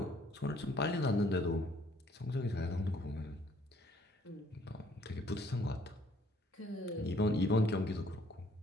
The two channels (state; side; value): normal; both; correlation 0.62